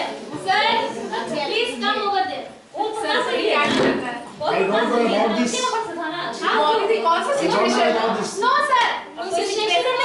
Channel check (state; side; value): identical; both; correlation 1.00